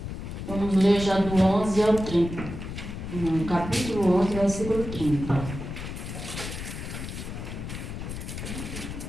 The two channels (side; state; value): left; noise; rumble, 7 dB below the sound